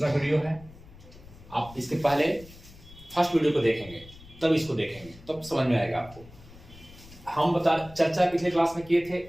वीडियो है। आप इसके पहले फर्स्ट वीडियो को देखेंगे तब इसको देखेंगे, तब समझ में आएगा आपको। हम चर्चा पिछले क्लास में किए थे,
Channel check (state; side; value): noise; left; rumble, 20 dB below the sound